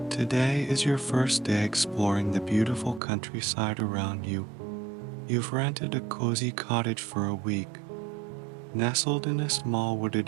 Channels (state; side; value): drops out; left; at 3.0 s